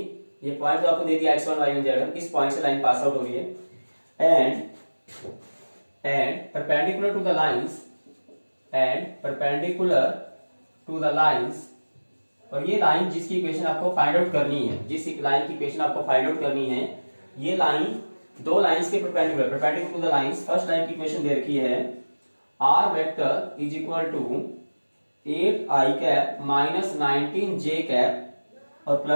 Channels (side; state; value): both; inverted; correlation -1.00